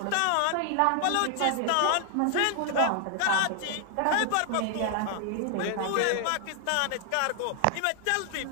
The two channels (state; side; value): different; both; correlation 0.00